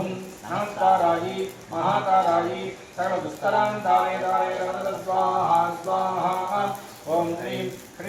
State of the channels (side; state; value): both; identical; correlation 1.00